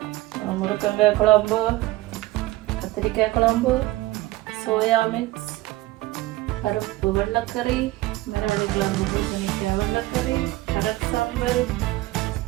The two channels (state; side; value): quieter; left; 17.9 dB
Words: முருங்கங்காய் குழம்பு, கத்திரிக்காய் குழம்பு, சோயா மிக்ஸ், பருப்பு வெள்ளைக்கறி, மரவள்ளி கிழங்கு பூசணிக்காய் வெள்ளைக்கறி, கடல் சாம்பல்,